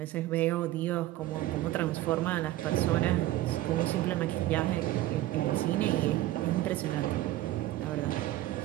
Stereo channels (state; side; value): quieter; left; 15.4 dB